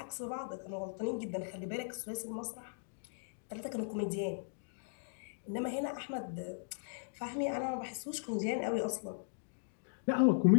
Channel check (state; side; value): silent; right; digital silence